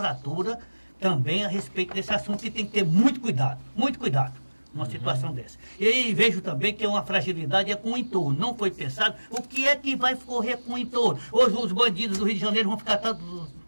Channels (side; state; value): both; inverted; correlation -1.00